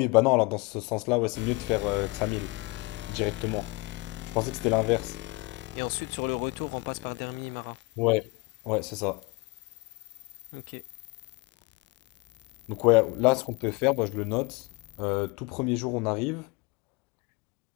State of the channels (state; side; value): quieter; right; 25.9 dB